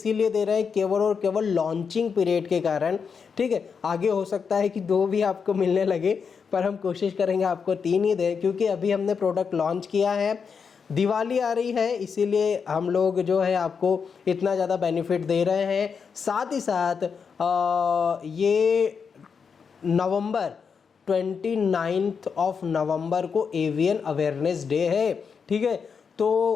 दे रहे हैं केवल और केवल लॉन्चिंग पीरियड के कारण, ठीक है। आगे हो सकता है कि 2 भी आपको मिलने लगे, पर हम कोशिश करेंगे आपको 3 ही दें, क्योंकि अभी हमने प्रोडक्ट लॉन्च किया है। दिवाली आ रही है इसीलिए हम लोग जो है आपको इतना ज़्यादा बेनिफिट दे रहे हैं। साथ ही साथ ये नवंबर 29 नवंबर को एवियन अवेयरनेस डे है, ठीक है। तो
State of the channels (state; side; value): quieter; right; 6.1 dB